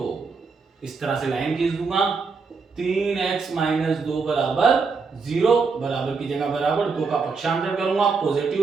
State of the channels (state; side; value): quieter; left; 4.8 dB